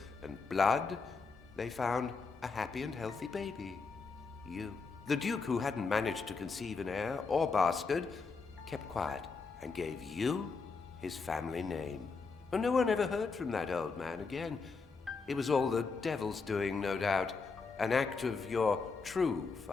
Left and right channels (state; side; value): quieter; right; 4.6 dB